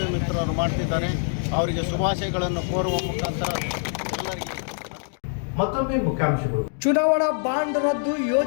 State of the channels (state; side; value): silent; right; digital silence